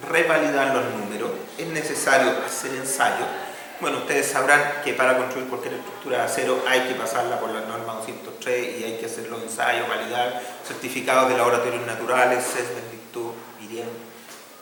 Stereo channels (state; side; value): identical; both; correlation 1.00